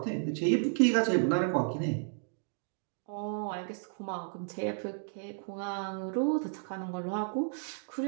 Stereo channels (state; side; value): silent; left; digital silence